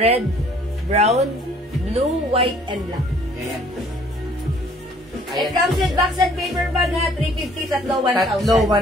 brown, blue, white, and black. Ayan po. It comes with box and paper bag ha. 350, tatlo 1,000. Tatlo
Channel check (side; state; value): both; normal; correlation 0.58